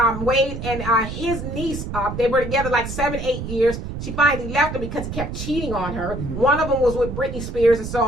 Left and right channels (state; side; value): noise; right; rumble, 7 dB below the sound